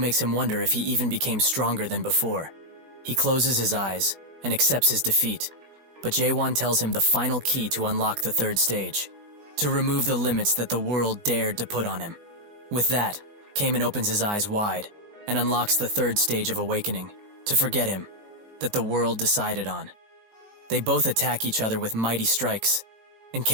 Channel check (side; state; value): left; late; 18 ms